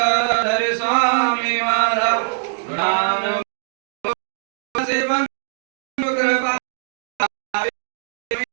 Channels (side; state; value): left; silent; digital silence